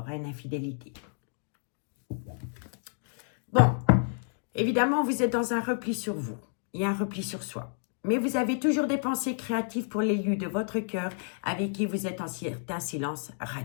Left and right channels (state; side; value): silent; right; digital silence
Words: à une infidélité. Bon, évidemment, vous êtes dans un repli sur vous. Il y a un repli sur soi. Mais vous avez toujours des pensées créatives pour l'élu de votre cœur avec qui vous êtes en certain silence